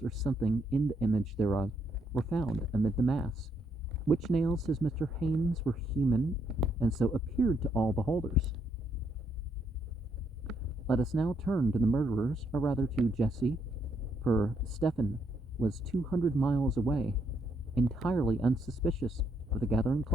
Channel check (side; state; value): both; normal; correlation 0.74